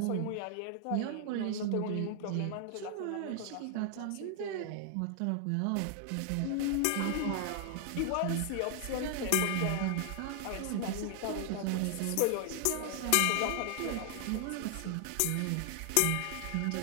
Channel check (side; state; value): both; different; correlation 0.00